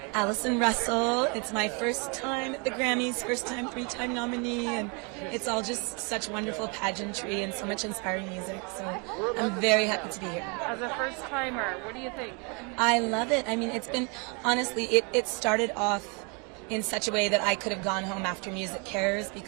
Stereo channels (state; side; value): quieter; left; 33.2 dB